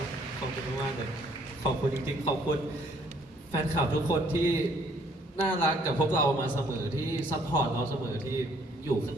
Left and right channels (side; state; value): both; normal; correlation 0.63